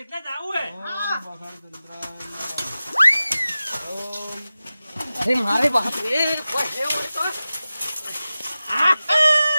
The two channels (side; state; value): both; inverted; correlation -0.95